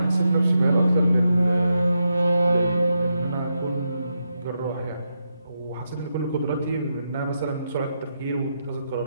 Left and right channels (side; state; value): both; inverted; correlation -0.84